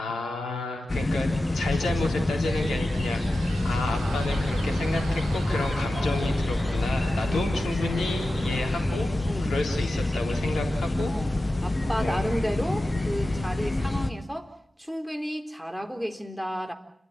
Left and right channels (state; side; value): normal; both; correlation 0.93